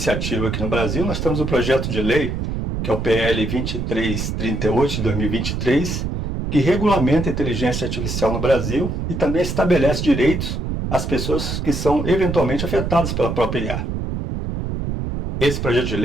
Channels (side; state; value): right; noise; rumble, 3 dB below the sound